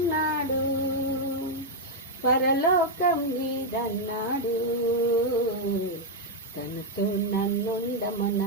పరలోకం నీదన్నాడు, తనతో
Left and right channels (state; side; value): normal; both; correlation 0.00